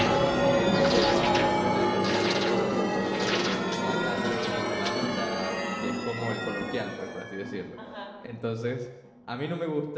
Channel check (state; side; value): identical; both; correlation 1.00